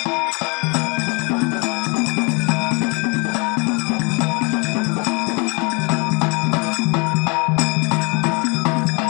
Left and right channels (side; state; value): right; quieter; 30.9 dB